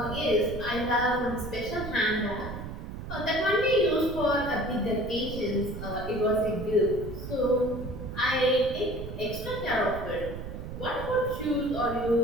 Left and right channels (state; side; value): noise; right; rumble, 9 dB below the sound